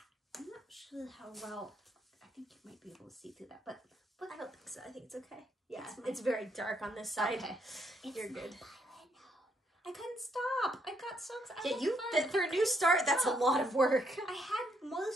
I'm not sure how well. I think you might be able to see through that, but I don't think so. I think it's okay. Yeah, it's very dark on this side. Okay, you're good. I couldn't stop. I got so excited. Yeah, for a new start, that's a lot of work. I had more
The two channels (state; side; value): normal; both; correlation 0.73